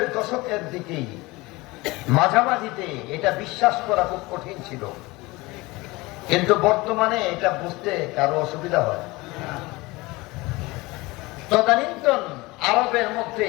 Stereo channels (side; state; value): right; quieter; 22.1 dB